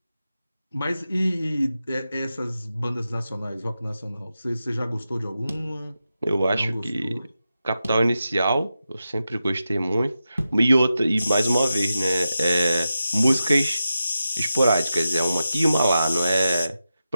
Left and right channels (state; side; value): inverted; both; correlation -0.91